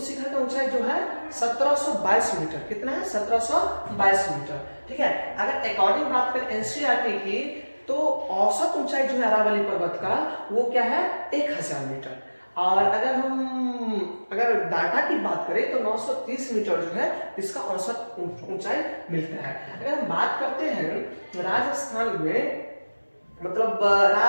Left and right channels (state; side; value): inverted; both; correlation -1.00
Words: शिखर का ऊंचाई जो है 1722 मीटर। कितना है? 1722 मीटर। ठीक है, अगर अकॉर्डिंग बात करें एनसीईआरटी की, तो औसत ऊंचाई जो है अरावली पर्वत का वो क्या है? 1000 मीटर। और अगर डाटा की बात करें तो 930 मीटर जो है इसका औसत ऊंचाई मिलता है। अगर हम बात करते हैं राजस्थान में, मतलब